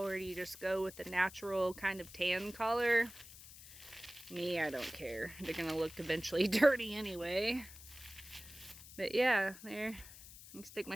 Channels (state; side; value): noise; left; hiss, 16 dB below the sound